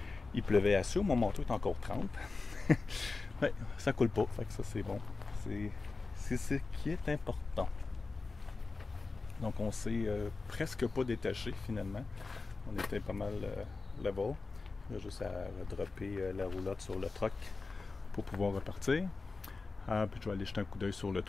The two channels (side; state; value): right; quieter; 3.9 dB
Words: Il pleuvait assez, mon manteau est encore 30. Ouais, ça coule pas, fait que ça c'est bon. C'est ce qui est important. Donc on s'est presque pas détaché finalement. On était pas mal level. Il y a juste à dropper la roulotte sur le truck pour pouvoir repartir. Puis je vais aller jeter un coup d'œil sur le